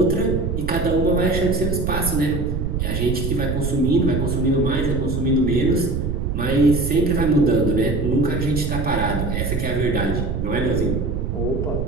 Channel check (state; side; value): noise; right; rumble, 1 dB below the sound